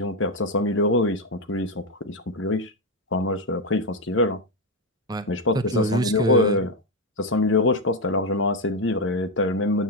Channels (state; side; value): normal; both; correlation 0.07